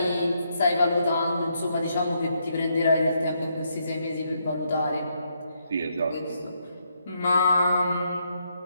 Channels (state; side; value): inverted; both; correlation -0.77